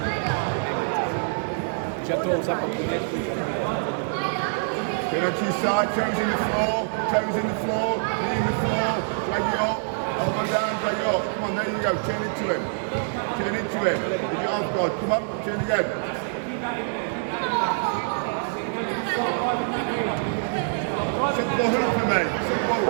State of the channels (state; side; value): silent; left; digital silence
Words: Turn onto your side, toes in the floor, knee in the floor, drag it up, elbow down, drag it up. Come on, there you go, turn into him. With your arms guard, come on, turn again. Set the ball up for me, set the ball